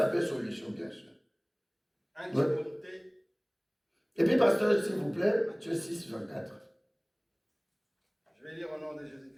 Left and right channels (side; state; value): both; identical; correlation 1.00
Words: solution, bien sûr. Timothée. Et puis, pasteur, s'il vous plaît, Matthieu 6, 24. Je vais lire au nom de